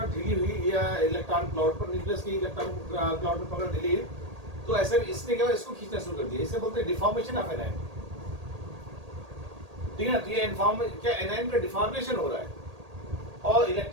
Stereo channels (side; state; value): left; late; 1.8 ms